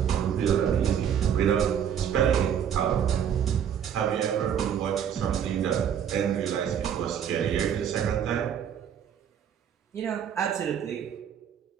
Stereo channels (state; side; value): quieter; left; 8.7 dB